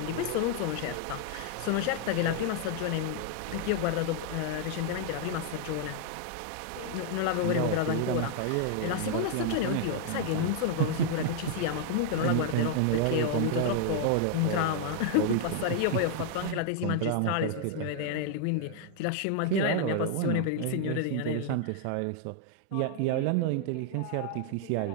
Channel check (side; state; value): both; different; correlation 0.00